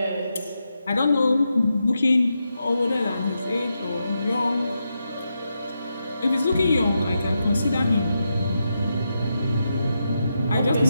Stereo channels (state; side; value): inverted; both; correlation -0.85